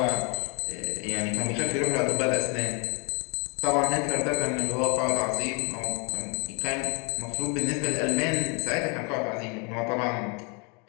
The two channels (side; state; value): right; quieter; 33.9 dB